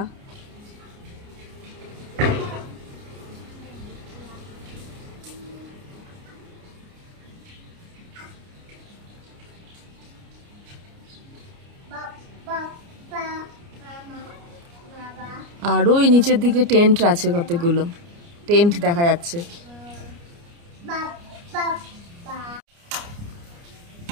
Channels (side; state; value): left; late; 29 ms